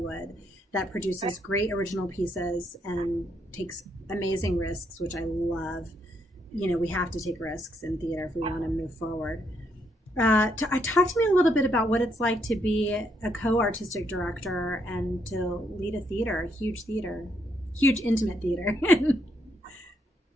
that produces great original pieces and takes amazing risks, which I love. We have to take risks in theater if we want to move forward. Talk to me a little bit about what it's like to be a co-artistic director and to lead a huge intimate theater.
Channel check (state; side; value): normal; both; correlation 0.75